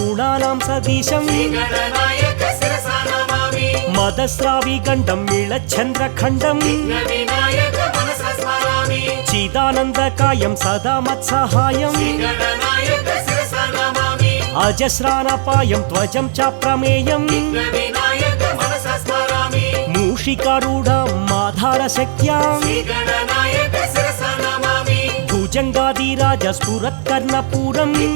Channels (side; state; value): left; silent; digital silence